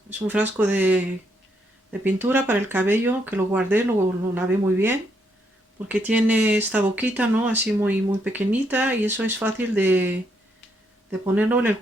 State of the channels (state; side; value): normal; both; correlation 0.75